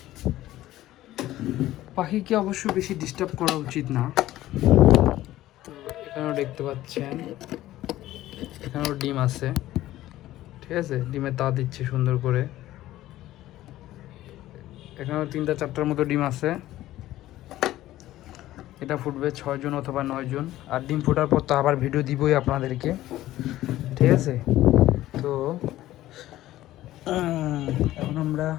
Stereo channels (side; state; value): right; quieter; 15.0 dB